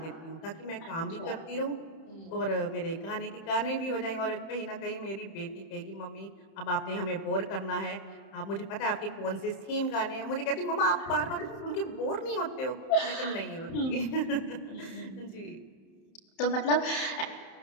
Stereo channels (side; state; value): right; late; 31 ms